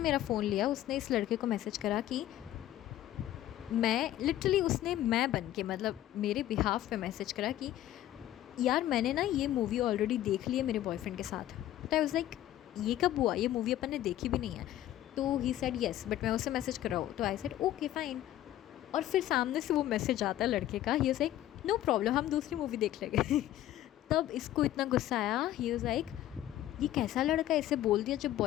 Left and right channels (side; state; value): right; quieter; 13.3 dB